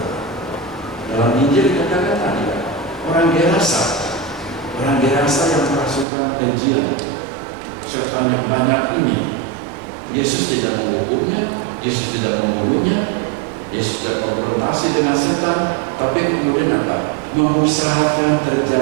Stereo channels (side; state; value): left; drops out; at 6.1 s